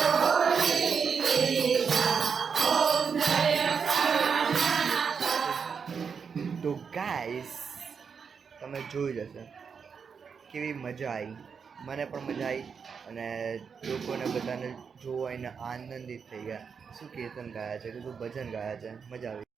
તો ગાઈસ તમે જોઈ જશે કેવી મજા આવી, મને પણ મજા આવી અને લોકોને બધાને જોઈને આનંદિત થઈ ગયા. શું કીર્તન ગાયા છે, કેટલું ભજન ગાયા છે, મજા આવી.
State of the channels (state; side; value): quieter; left; 6.2 dB